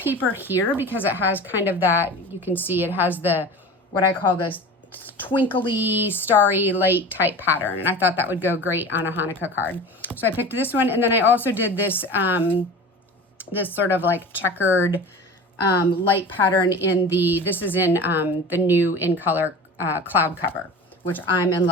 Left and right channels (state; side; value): normal; both; correlation 0.35